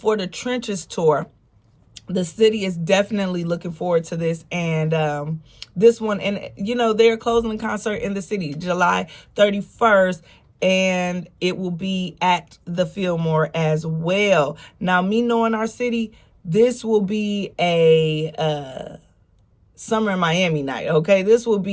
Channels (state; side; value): identical; both; correlation 1.00